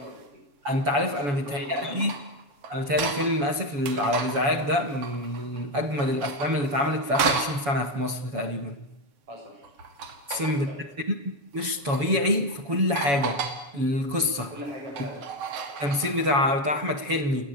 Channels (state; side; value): late; left; 7.1 ms